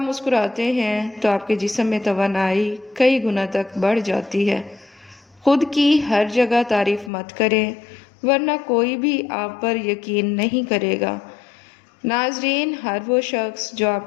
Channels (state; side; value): drops out; right; at 7.1 s